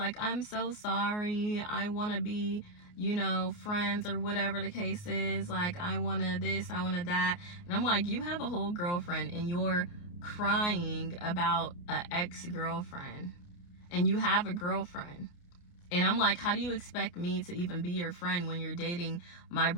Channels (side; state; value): right; late; 29 ms